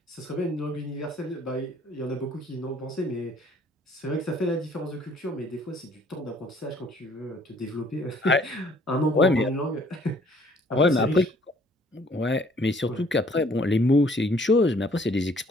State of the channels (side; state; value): both; normal; correlation 0.59